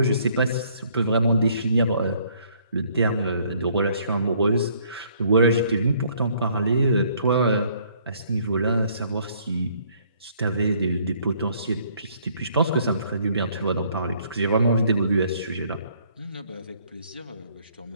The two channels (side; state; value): both; inverted; correlation -0.63